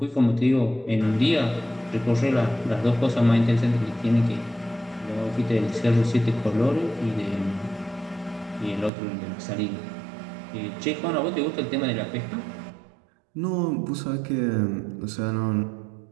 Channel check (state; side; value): drops out; left; at 8.9 s